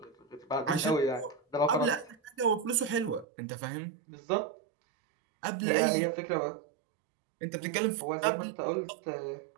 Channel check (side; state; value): left; drops out; at 3.2 s